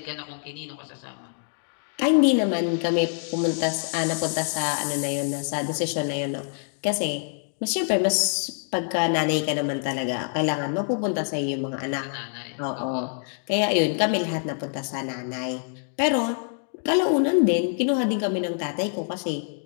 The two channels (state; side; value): silent; right; 61 dB below the other